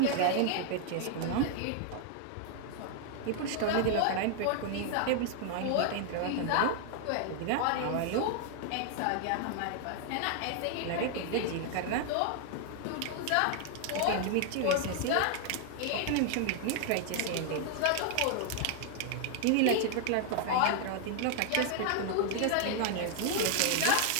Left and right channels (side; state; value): both; different; correlation 0.00